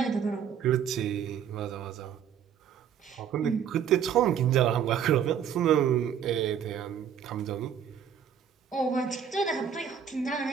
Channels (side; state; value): left; quieter; 8.3 dB